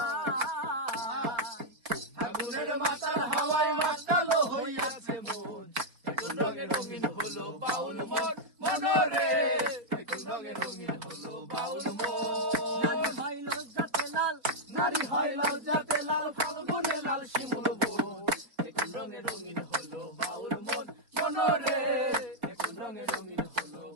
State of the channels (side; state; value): left; late; 4.3 ms